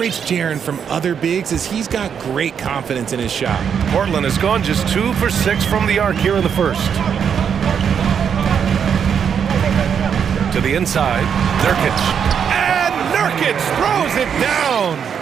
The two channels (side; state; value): left; quieter; 7.5 dB